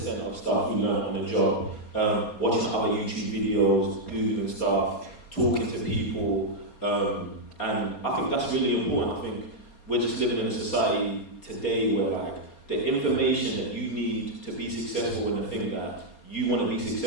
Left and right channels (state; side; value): late; right; 4.3 ms